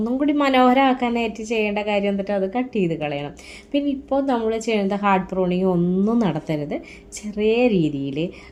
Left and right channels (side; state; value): both; identical; correlation 1.00